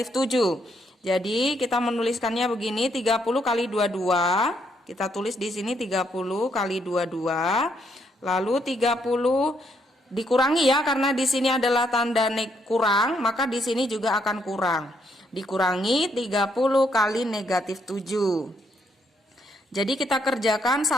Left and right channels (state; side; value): normal; both; correlation 0.73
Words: 7. Jadi kita menuliskannya begini, 30 kali 22. Kita tulis di sini 30 kali 22. Lalu 30 dikurangi ya, karena di sini adalah tanda kurang, maka di sini juga akan kurang. Dikurangi 30 kali negatif 7. Jadi kita kerjakan